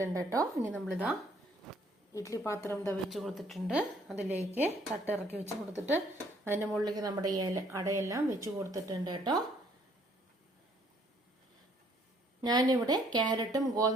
കേട്ടോ. ഇനി നമ്മളിതാ ഇഡ്ഡലി പാത്രം വെച്ച് കൊടുത്തിട്ടുണ്ട്. അതിലേക്ക് തട്ടിറക്കി വെച്ച് കൊടുത്തിട്ട് അതിൻ്റെ മുകളിലേക്ക് നമ്മുടെ അടയെല്ലാം വെച്ച് കൊടുത്തിട്ടുണ്ട് കേട്ടോ. ഞാനിവിടെ ക്യാരറ്റും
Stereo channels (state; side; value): normal; both; correlation 0.63